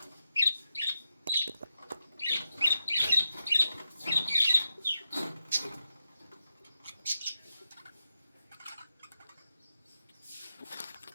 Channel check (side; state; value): both; inverted; correlation -0.88